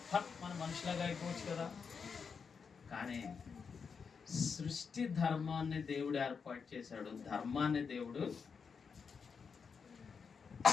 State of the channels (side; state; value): right; quieter; 5.8 dB